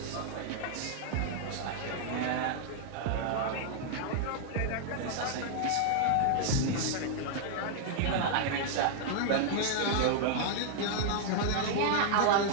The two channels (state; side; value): different; both; correlation -0.01